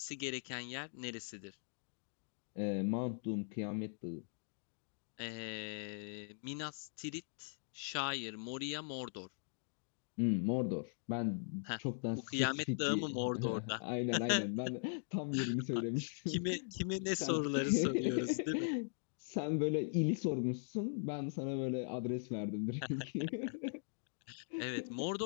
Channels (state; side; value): silent; right; digital silence